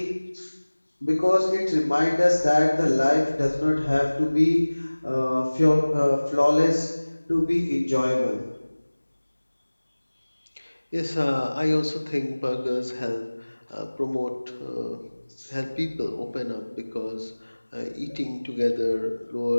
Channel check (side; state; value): both; inverted; correlation -1.00